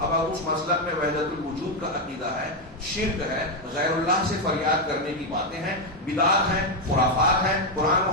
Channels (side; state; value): both; normal; correlation 0.05